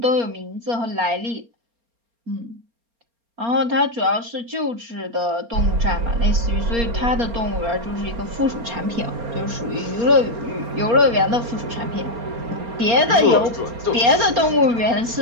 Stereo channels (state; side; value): late; left; 4.3 ms